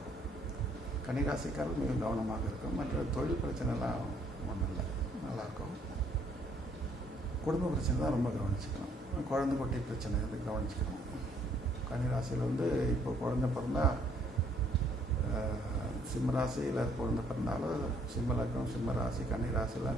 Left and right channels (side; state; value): both; normal; correlation 0.66